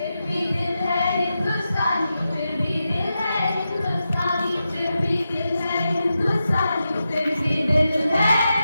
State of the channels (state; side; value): inverted; both; correlation -0.89